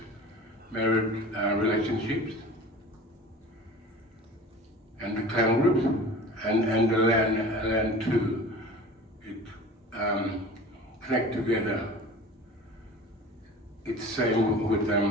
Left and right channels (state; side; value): normal; both; correlation 0.40